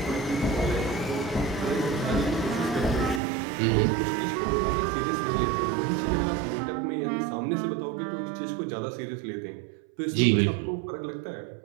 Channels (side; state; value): left; drops out; at 3.2 s